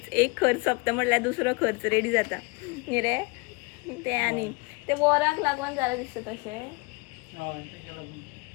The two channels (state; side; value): quieter; right; 28.2 dB